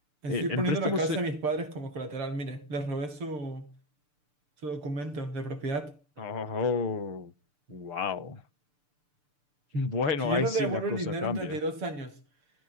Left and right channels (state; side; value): late; left; 6.8 ms